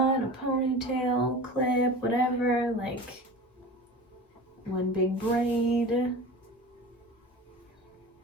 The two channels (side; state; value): both; normal; correlation 0.35